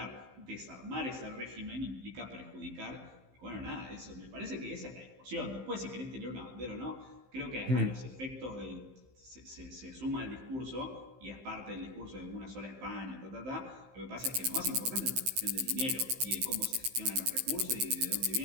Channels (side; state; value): left; late; 15 ms